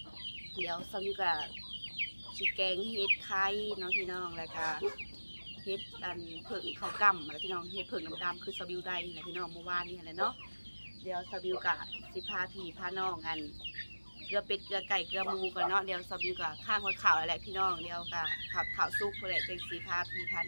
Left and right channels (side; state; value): both; inverted; correlation -1.00